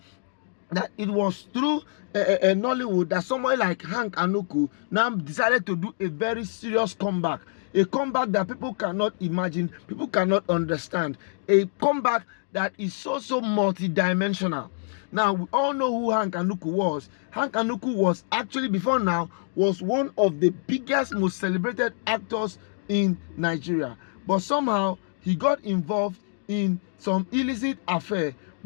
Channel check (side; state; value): right; silent; digital silence